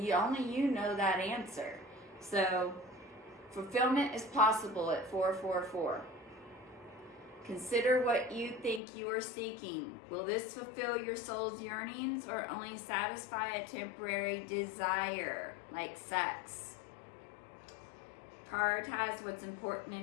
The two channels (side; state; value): right; drops out; at 8.8 s